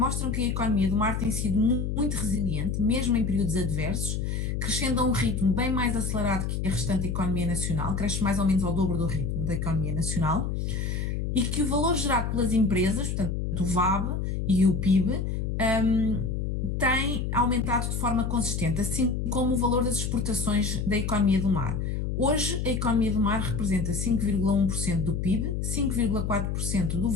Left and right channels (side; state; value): left; noise; hum, 1 dB below the sound